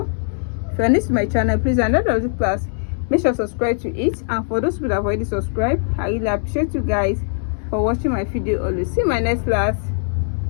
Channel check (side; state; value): right; silent; 65 dB below the other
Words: If you're new to my channel, please another the class, make sure to subscribe to it. And for those people that have already subscribed, I really appreciate you guys for watching my video always. See you in my next class.